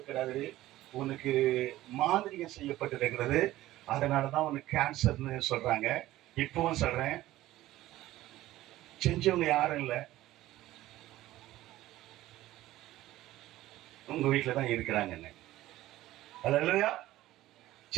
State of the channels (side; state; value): left; quieter; 15.6 dB